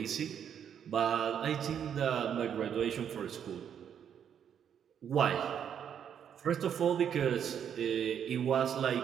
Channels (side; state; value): left; quieter; 8.6 dB